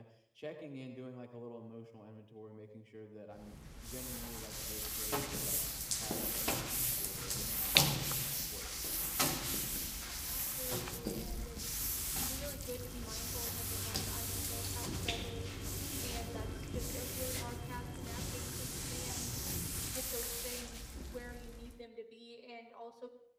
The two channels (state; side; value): identical; both; correlation 1.00